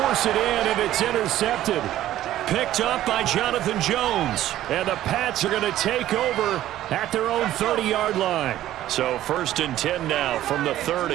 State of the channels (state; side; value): quieter; left; 13.4 dB